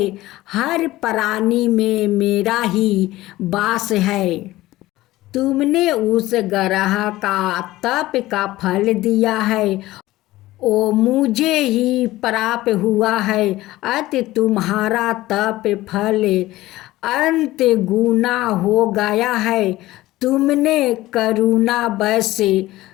हर प्राणी में मेरा ही वास है। तुमने उस गरहा का तप का फल दिया है, ओ मुझे ही प्राप्त हुआ है। अत तुम्हारा तप फल अंत गुना हो गया है। तुमने करुणा बस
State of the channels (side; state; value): right; quieter; 17.1 dB